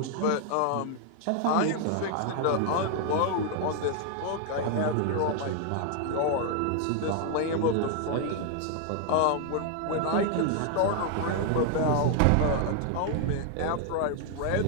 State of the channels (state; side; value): different; both; correlation 0.00